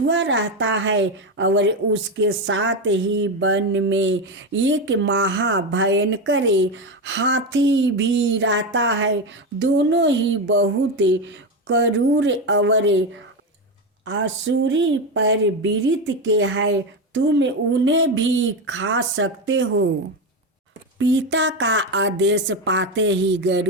रहता है और उसके साथ ही वन में एक महाभयंकर हाथी भी रहता है। दोनों ही बहुत क्रूर और आसुरी प्रवृत्ति के हैं। तुम उन्हें भी खा सकते हो। पिता का आदेश पाते ही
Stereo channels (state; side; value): normal; both; correlation 0.14